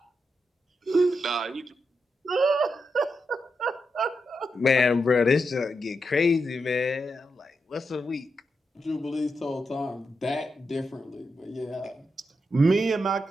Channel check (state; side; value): normal; both; correlation 0.85